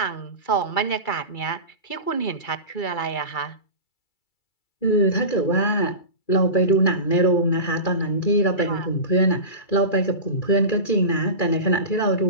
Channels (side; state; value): right; late; 2.3 ms